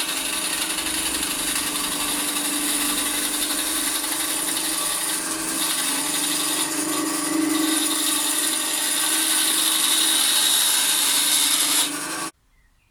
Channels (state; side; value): identical; both; correlation 1.00